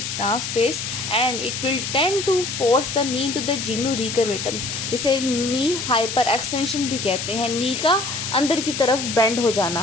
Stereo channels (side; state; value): left; noise; hiss, 5 dB below the sound